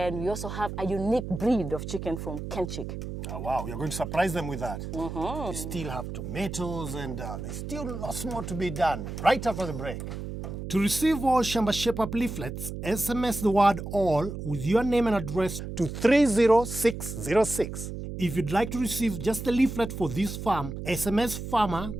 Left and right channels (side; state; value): right; noise; hum, 7 dB below the sound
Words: we also have a unique breed of chicken from Kenchik. Oh, wow, you're going to surprise them with that. You still have tomatoes and there's still lots more to be done right after the break. To receive all Shamba Shape-Up leaflets, SMS the word all with your name and address to 30606. If you'd like to receive just the leaflet for this farm, SMS farmer,